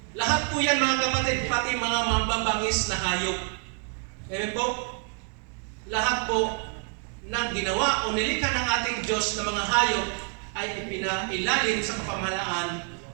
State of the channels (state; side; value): quieter; left; 39.3 dB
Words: Lahat po yan, mga kapatid, pati mga mababangis na hayop. Amen po? Lahat po ng ginawa o nilikha ng ating Diyos na mga hayop ay ipinailalim sa kapamahalaan